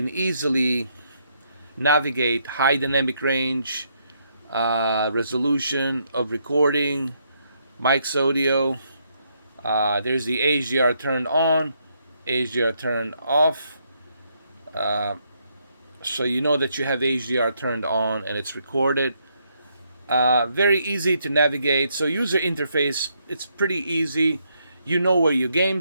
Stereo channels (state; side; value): inverted; both; correlation -0.75